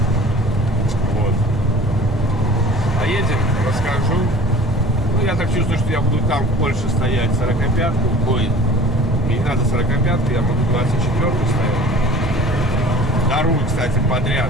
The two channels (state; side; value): noise; right; rumble, 8 dB below the sound